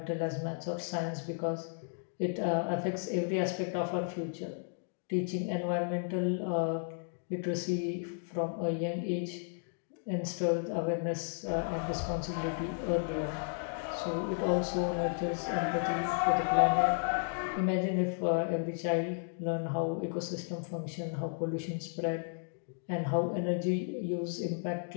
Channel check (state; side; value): silent; right; 55 dB below the other